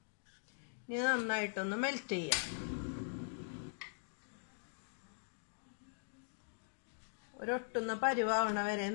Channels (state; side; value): silent; right; digital silence